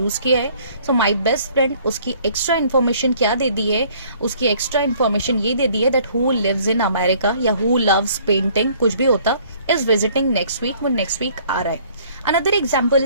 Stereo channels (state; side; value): inverted; both; correlation -0.58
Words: किया है. सो माई बेस्ट फ्रेंड, उसकी एक्स्ट्रा इन्फॉर्मेशन क्या दे दी है, उसकी एक्स्ट्रा इन्फॉर्मेशन ये दे दी है that who lives in America या हु लव्स पेंटिंग, कुछ भी होता, इज विजिटिंग नेक्स्ट वीक, वो नेक्स्ट वीक आ रहा है. Another example